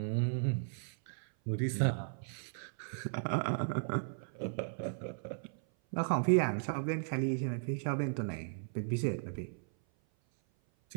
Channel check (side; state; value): left; silent; 54 dB below the other